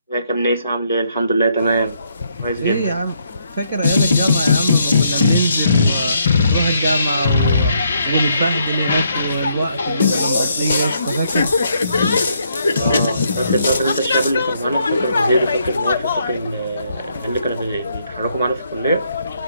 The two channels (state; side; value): inverted; both; correlation -0.73